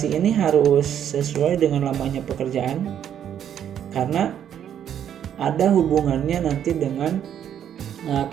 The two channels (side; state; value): left; quieter; 9.6 dB